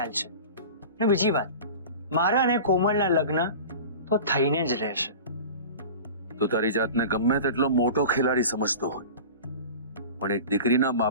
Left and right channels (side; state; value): both; inverted; correlation -0.35